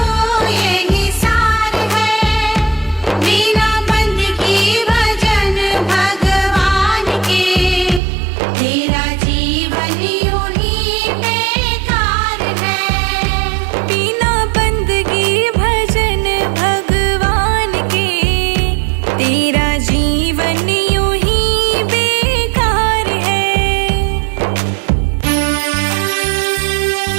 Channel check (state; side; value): drops out; left; at 8.0 s